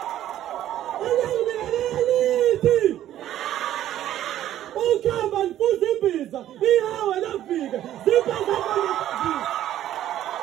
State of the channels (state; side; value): quieter; left; 12.3 dB